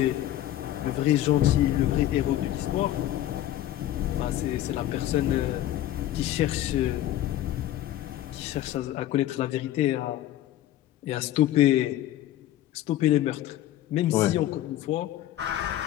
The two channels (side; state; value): right; quieter; 13.3 dB